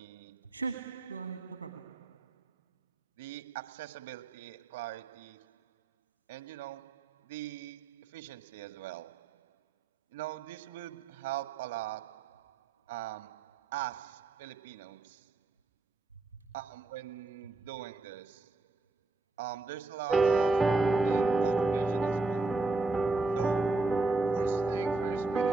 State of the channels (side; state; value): left; quieter; 3.5 dB